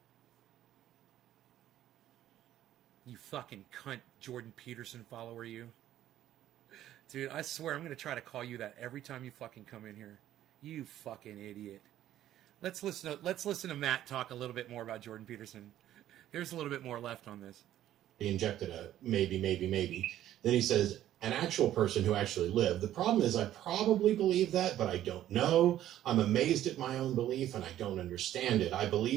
You fucking cunt, Jordan Peterson follower, you. Dude, I swear I'm going to try to call you that every time you fucking come in here. You fucking idiot. Let's listen to Matt talk a little bit more about Jordan Peterson. There's a little bit more left on this. He injected a maybe. Then he says, an actual person who actually lived. The problem is I probably believe that, but I don't know. I'm amazed at my own belief, and I don't understand it. I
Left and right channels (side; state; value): left; quieter; 12.5 dB